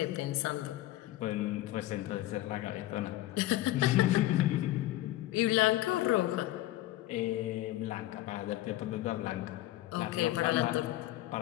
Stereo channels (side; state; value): right; quieter; 15.6 dB